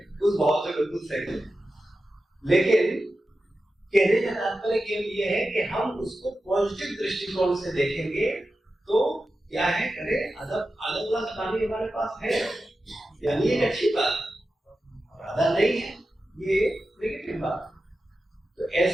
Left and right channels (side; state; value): both; normal; correlation 0.92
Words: उस भाव से बिल्कुल सही है। लेकिन कहने का तात्पर्य केवल ये है कि हम उसको पॉजिटिव दृष्टिकोण से देखेंगे तो क्या है, करे अलग अलग पानी हमारे पास है, यानी एक अच्छी बात, आधा नहीं है ये नेगेटिव बात। तो